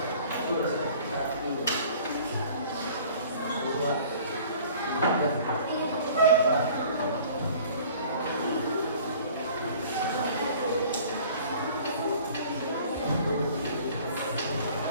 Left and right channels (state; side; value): inverted; both; correlation -0.49